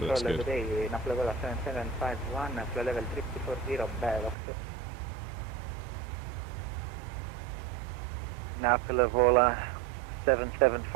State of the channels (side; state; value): left; drops out; at 4.4 s